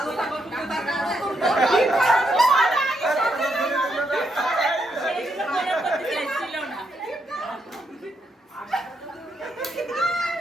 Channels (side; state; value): both; normal; correlation 0.79